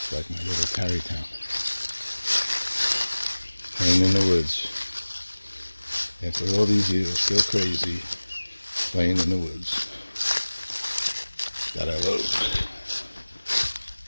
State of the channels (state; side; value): inverted; both; correlation -1.00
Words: like my little Tarrytown. Playing in the woods. After all these years, still crazy, playing in the woods. That I love.